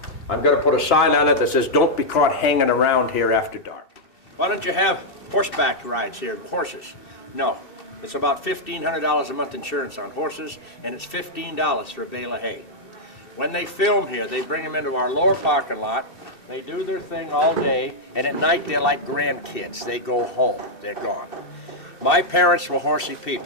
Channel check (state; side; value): late; right; 2.7 ms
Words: I'm going to put a sign on it that says, don't be caught hanging around here after dark. Why don't you have horseback rides here, horses? No. It's about $1,500 a month insurance on horses, and it's $15 for a bale of hay. When they film here, they bring them into our lower parking lot. They do their thing all day, and at night they're like grandkids. They go home. They're gone. My parents were horsey